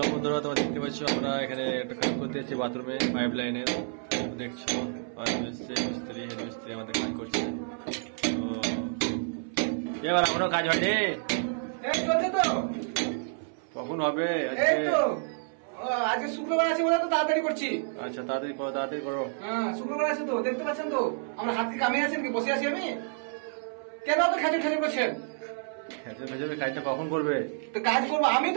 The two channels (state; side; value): silent; left; 58 dB below the other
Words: বন্ধুরা, তোমরা দেখতে পাচ্ছ আমরা এখানে একটা কাজ করতে যাচ্ছি বাথরুমে পাইপ লাইনের। দেখছো মিস্ত্রি হেড মিস্ত্রি আমাদের কাজ করছে। তো এবার এখনো কাজ হয়নি, কখন হবে? আজকে শুক্রবার আছে বলে তো তাড়াতাড়ি করছি। আচ্ছা তাড়াতাড়ি করো, তাড়াতাড়ি করো। হ্যাঁ শুক্রবার আছে তো, দেখতে পাচ্ছেন তো আমরা হাত কি কামিয়ে আছেন কি বসে আছি আমি? কেন তো খেজুর খেজুর করছেন? ভেজে কাজটা কখন করবে? তো কাজ করবো, আমি